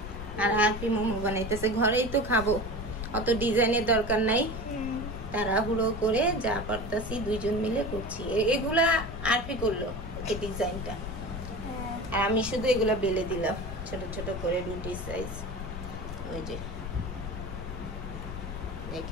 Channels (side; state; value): left; noise; rumble, 7 dB below the sound